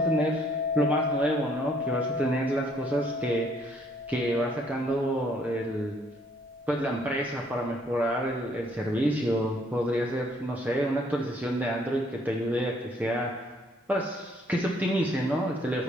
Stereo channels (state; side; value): normal; both; correlation 0.65